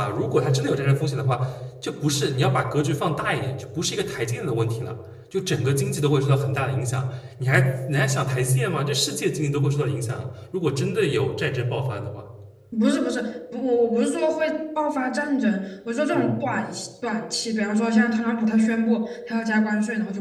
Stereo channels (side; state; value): both; identical; correlation 1.00